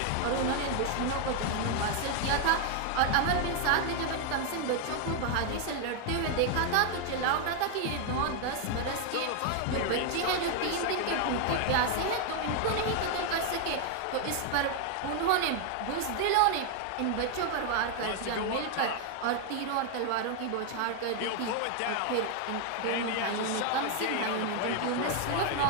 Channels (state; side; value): different; both; correlation 0.00